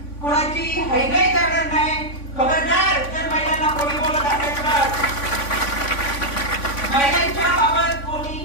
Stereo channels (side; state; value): right; late; 3.5 ms